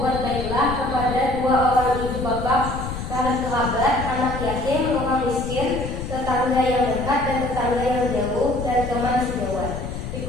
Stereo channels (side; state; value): left; noise; rumble, 7 dB below the sound